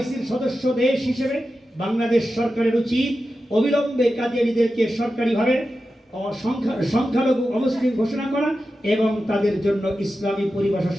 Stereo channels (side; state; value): both; normal; correlation 0.92